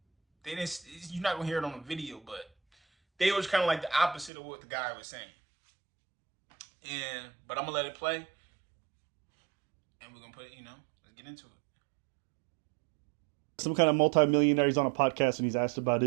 They didn't. You're not gonna hear it on the video, but they was kind of like the opposite of what the guy was saying. But I'm gonna let it play, and we're gonna put it. Let's get into it. Some kind of multi-millionaire. He's on a podcast and he's asked about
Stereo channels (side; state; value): left; drops out; at 4.3 s